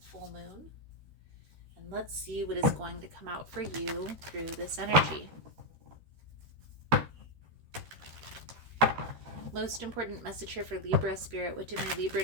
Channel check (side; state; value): left; late; 13 ms